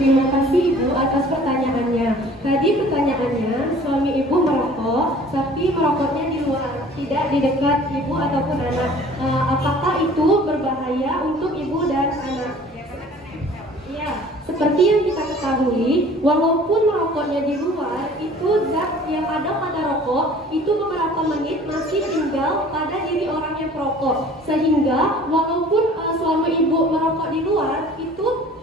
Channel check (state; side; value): normal; both; correlation 0.49